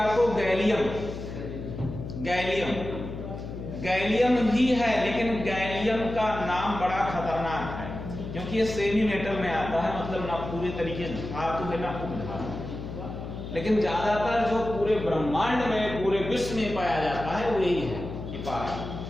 आपको गैलियम। गैलियम भी है, लेकिन गैलियम का नाम बड़ा खतरनाक है क्योंकि ये सेमी मेटल में आता है, मतलब ना पूरे तरीके से धातु है ना उपधातु। लेकिन ज्यादातर जो पूरे ब्रह्मांड में, पूरे विश्व में पाया जाता है वो यही है कि पारा।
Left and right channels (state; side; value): noise; left; hum, 8 dB below the sound